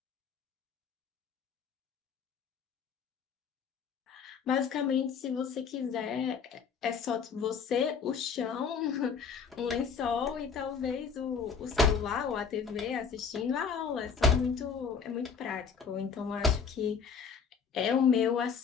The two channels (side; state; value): right; quieter; 6.1 dB